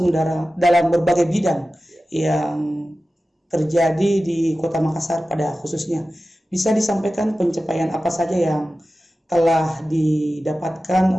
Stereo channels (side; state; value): both; normal; correlation 0.95